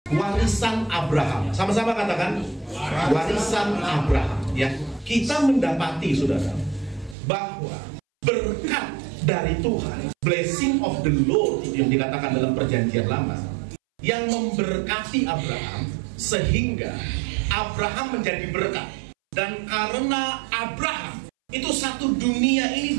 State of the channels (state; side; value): drops out; left; at 7.2 s